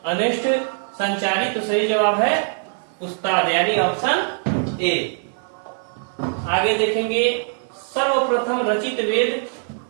अनिष्ट, संचारी। तो सही जवाब है उस्ताद यानी ऑप्शन ए। आगे देखेंगे सर्वप्रथम रचित वेद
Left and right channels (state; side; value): silent; left; digital silence